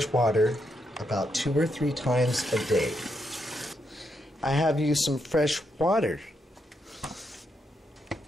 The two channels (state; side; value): normal; both; correlation 0.80